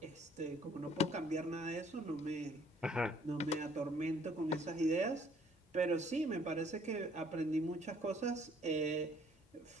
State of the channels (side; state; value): both; normal; correlation 0.60